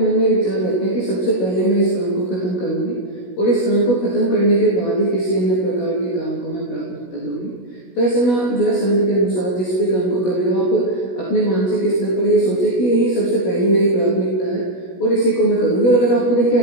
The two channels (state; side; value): late; right; 16 ms